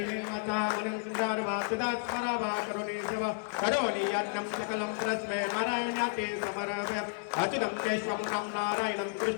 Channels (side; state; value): right; quieter; 35.1 dB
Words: अनंतर वासुदात स्मरावा करुणी सेवा करोनी अन्नम सकलम प्रस्मे नारायणाते समर्पय अच्युतं केशवं राम नारायणं